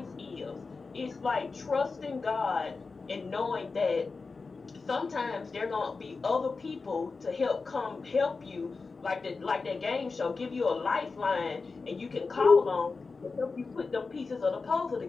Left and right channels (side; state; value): right; quieter; 4.3 dB